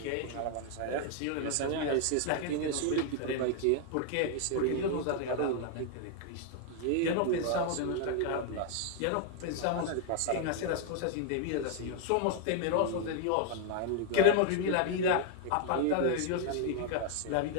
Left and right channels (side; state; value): both; different; correlation 0.00